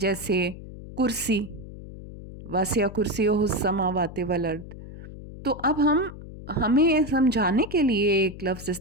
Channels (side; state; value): left; noise; hum, 14 dB below the sound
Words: کرسی، واسع کرسیہ السماوات والارض. تو اب ہمیں سمجھانے کے لیے ایک لفظ